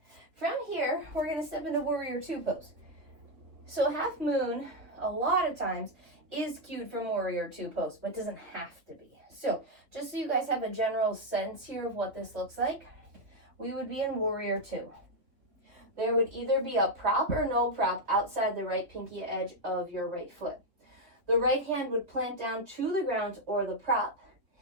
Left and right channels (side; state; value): left; late; 3.0 ms